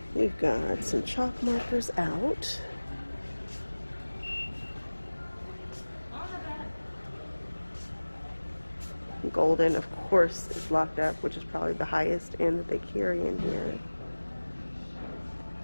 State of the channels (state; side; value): inverted; both; correlation -1.00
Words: We've got some chalk markers out. Golden, of course, is locked up, which is probably the highest end that they carry in here